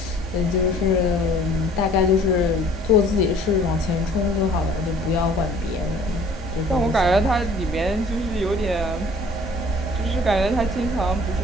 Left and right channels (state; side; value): noise; left; hum, 20 dB below the sound